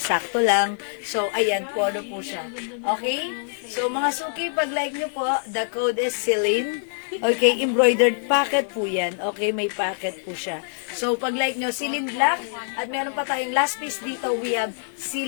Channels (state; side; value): silent; right; digital silence